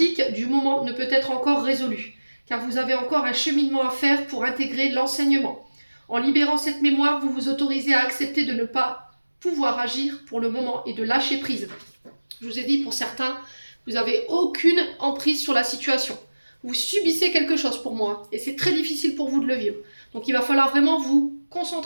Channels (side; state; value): both; inverted; correlation -1.00